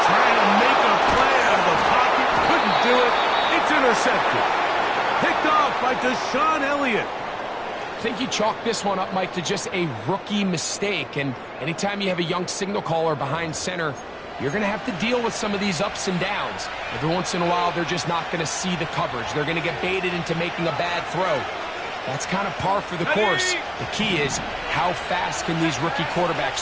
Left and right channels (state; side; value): identical; both; correlation 1.00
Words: Trying to make a play out of the pocket. Couldn't do it. It's intercepted. Picked off by Deshaun Elliott. I think you chalk this one up, Mike, to just a rookie mistake. And anytime you have a young signal caller behind center, you're going to have to deal with some of these ups and downs. Every once in a while, they're just not going to see the coverage. They're going to get baited into making a bad throw. That's kind of par for the course. The key is how fast can these rookie